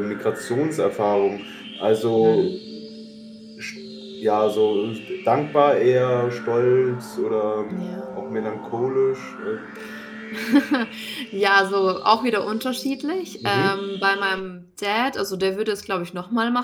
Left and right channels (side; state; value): both; identical; correlation 1.00